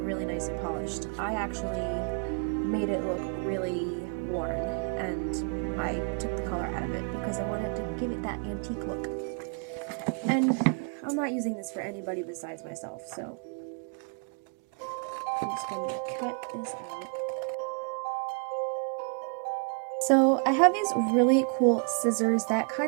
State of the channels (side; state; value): left; quieter; 39.4 dB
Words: nice and polished. I actually made it look really worn, and I took the color out of it because I wanted to give it that antique look. And I'm not using this for anybody besides myself, so I'm just going to cut this out. So I have these really cool scissors that